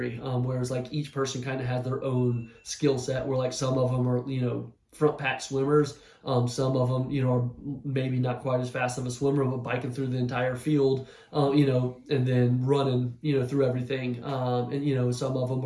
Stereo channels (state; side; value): identical; both; correlation 1.00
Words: whereas like each person kind of had their own skill set. Where like some of them are front pack swimmers. Some of them, are maybe not quite as fast of a swimmer, but biking through the entire field, and then running, through everything. And some of them